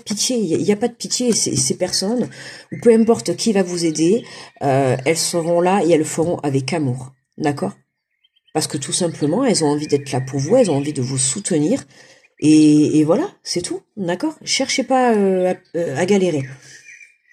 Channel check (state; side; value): identical; both; correlation 1.00